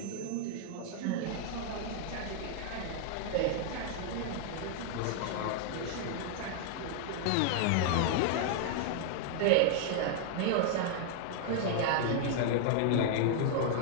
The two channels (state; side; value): different; both; correlation 0.00